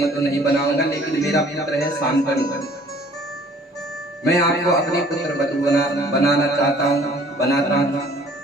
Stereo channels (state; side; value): normal; both; correlation 0.55